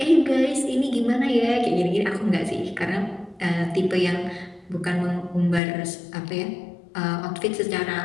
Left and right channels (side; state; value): right; drops out; at 5.6 s